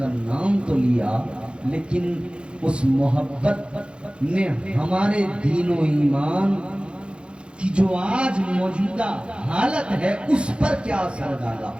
نام تو لیا، لیکن اس محبت نے ہمارے دین و ایمان کی جو آج موجودہ حالت ہے اس پر کیا اثر ڈالا؟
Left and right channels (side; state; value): left; late; 0.056 ms